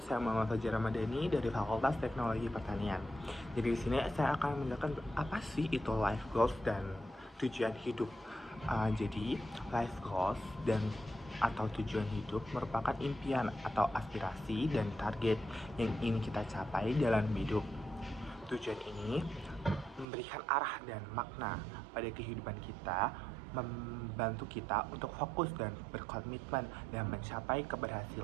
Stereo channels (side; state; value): left; drops out; at 20.1 s